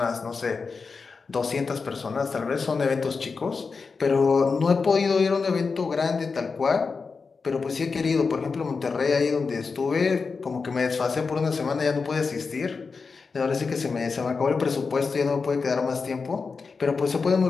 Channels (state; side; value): quieter; right; 4.8 dB